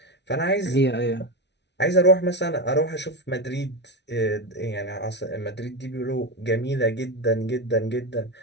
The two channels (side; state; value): right; late; 0.50 ms